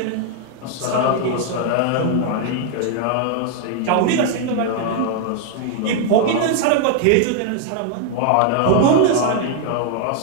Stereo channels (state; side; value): different; both; correlation 0.00